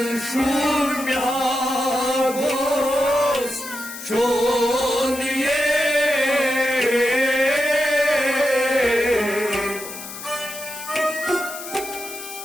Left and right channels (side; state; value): left; noise; hiss, 11 dB below the sound